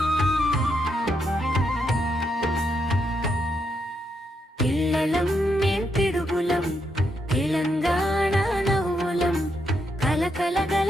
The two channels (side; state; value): both; normal; correlation 0.80